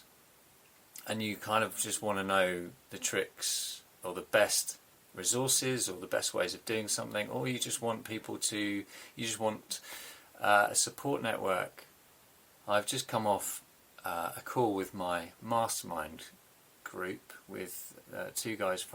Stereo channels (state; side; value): identical; both; correlation 1.00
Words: and you kind of just want to know the tricks or the best resources or the best ways of doing something, or you just want a support network. I've just come off a call with my mastermind group with two guys,